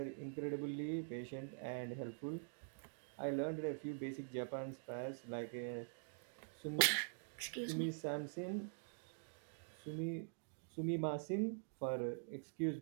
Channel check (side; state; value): left; silent; digital silence